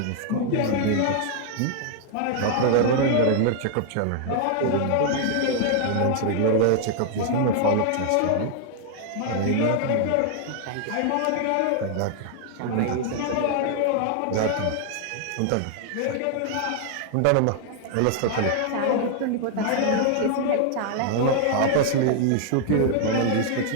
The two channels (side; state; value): both; different; correlation 0.00